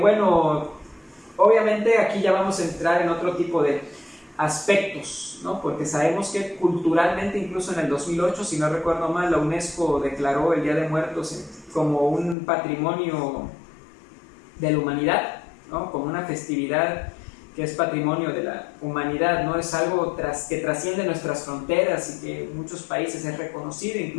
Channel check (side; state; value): right; drops out; at 12.4 s